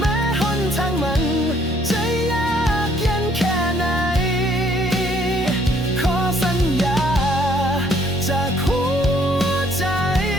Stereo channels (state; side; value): normal; both; correlation 0.64